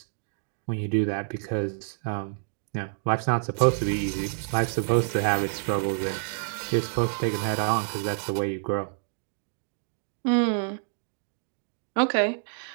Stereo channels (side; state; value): left; silent; 59 dB below the other